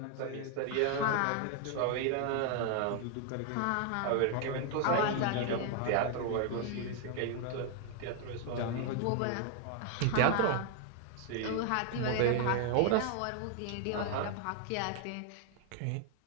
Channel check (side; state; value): both; different; correlation 0.00